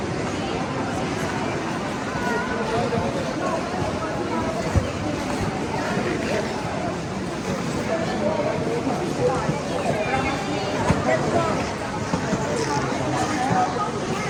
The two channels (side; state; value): both; identical; correlation 1.00